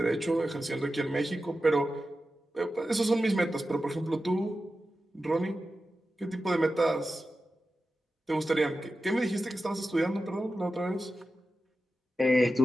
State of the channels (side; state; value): both; normal; correlation 0.92